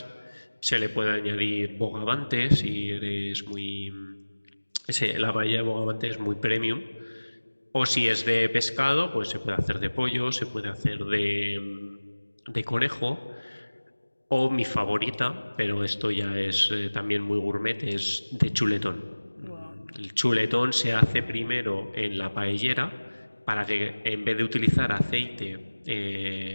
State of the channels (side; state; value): both; inverted; correlation -1.00